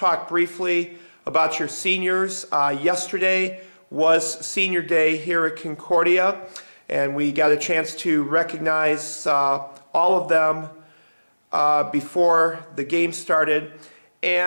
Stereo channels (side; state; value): both; inverted; correlation -1.00